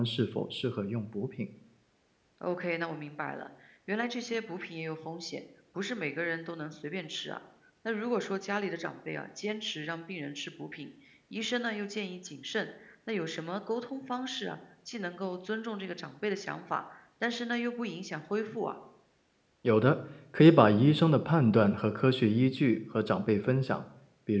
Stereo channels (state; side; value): identical; both; correlation 1.00